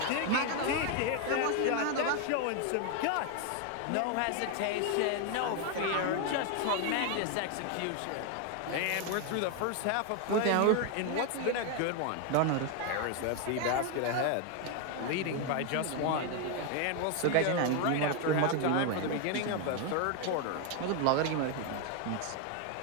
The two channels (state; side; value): different; both; correlation 0.01